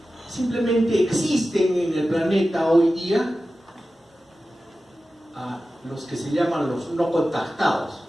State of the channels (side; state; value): both; normal; correlation 0.94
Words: Simplemente existen en el planeta hoy día a los que se llaman los no contactados.